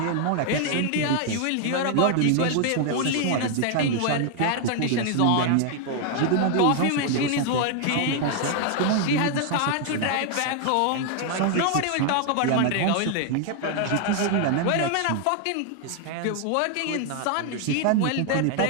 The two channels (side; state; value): both; different; correlation 0.00